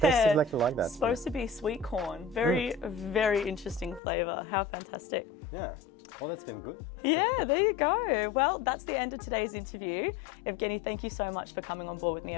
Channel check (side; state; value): right; drops out; at 4.0 s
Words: tastes exactly like that. It's supposed to be sweet corn. Very, very interesting flavour. How fantastic. Yeah. Well, that's been good. Yeah, there you go. Well, that's the end of today's interview. Evgueni, thank you so much for coming on board with me.